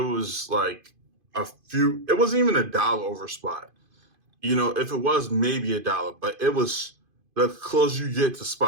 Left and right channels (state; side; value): late; left; 2.5 ms